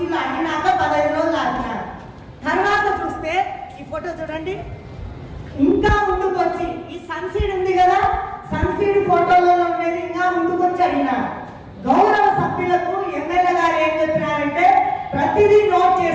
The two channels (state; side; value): identical; both; correlation 1.00